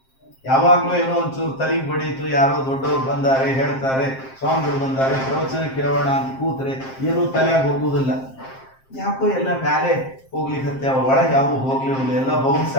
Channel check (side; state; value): right; late; 7.6 ms